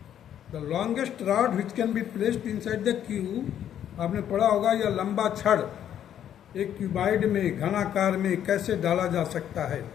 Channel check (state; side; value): quieter; right; 10.1 dB